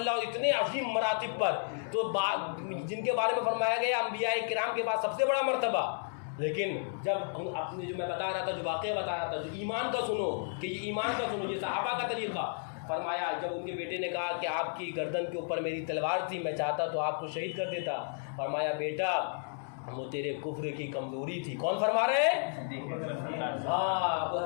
اور اتنے عظیم مراتب پر، تو جن کے بارے میں فرمایا گیا انبیاء کرام کے بعد سب سے بڑا مرتبہ، لیکن جب اپنے جو میں بتا رہا تھا، جو واقعہ بتا رہا تھا، جو ایمان کا سنو کہ یہ ایمان کا سنو، یہ صحابہ کا طریقہ، فرمایا جب ان کے بیٹے نے کہا کہ آپ کی گردن کے اوپر میری تلوار تھی، میں چاہتا تو آپ کو شہید کر دیتا، فرمایا بیٹا وہ تیرے کفر کی کمزوری تھی۔ کون فرما رہے ہیں؟ ہاں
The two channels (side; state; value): right; silent; 56 dB below the other